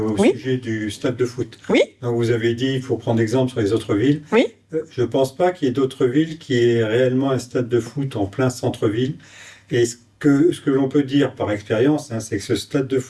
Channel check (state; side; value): identical; both; correlation 1.00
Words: sujet du stade de foot. Oui. Donc vous avez dit qu'il faut prendre exemple sur les autres villes. Oui. Je ne pense pas qu'il y ait d'autres villes qui aient réellement un stade de foot en plein centre-ville. Est-ce ce que l'on peut dire par expérience, hein, c'est que ce stade de